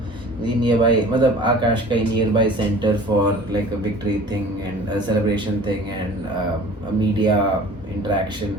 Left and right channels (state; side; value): normal; both; correlation 0.45